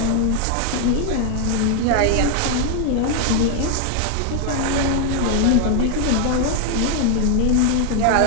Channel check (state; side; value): different; both; correlation 0.00